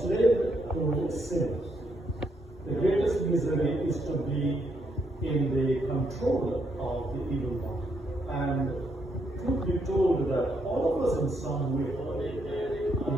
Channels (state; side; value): normal; both; correlation 0.76